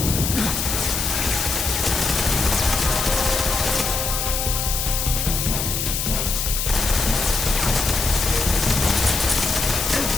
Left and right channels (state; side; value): noise; left; hiss, 1 dB below the sound